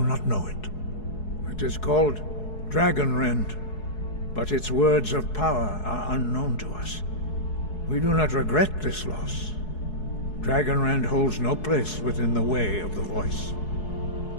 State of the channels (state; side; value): late; right; 4.7 ms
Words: not know it. It is called Dragonrend, but its words of power are unknown to us. We do not regret this loss. Dragonrend holds no place within the way of the voice.